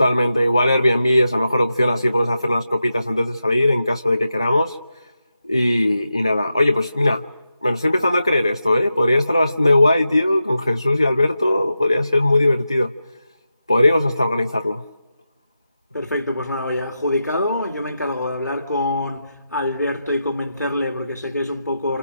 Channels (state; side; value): inverted; both; correlation -0.89